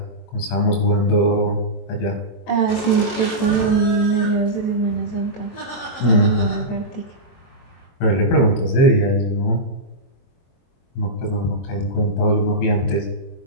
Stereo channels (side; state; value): right; late; 23 ms